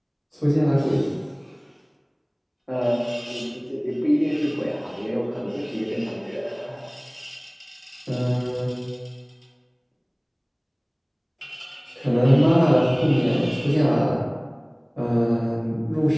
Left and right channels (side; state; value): both; identical; correlation 1.00